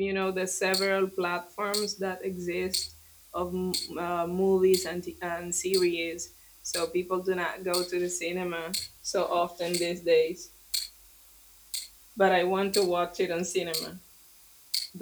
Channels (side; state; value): both; identical; correlation 1.00